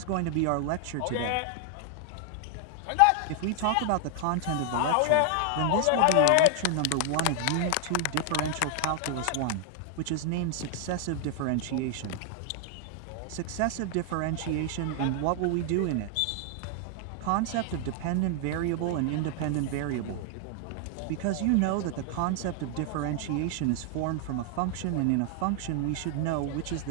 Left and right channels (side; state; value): both; different; correlation 0.00